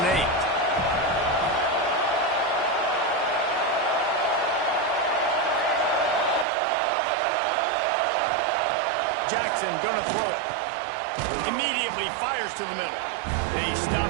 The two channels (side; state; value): left; drops out; at 6.5 s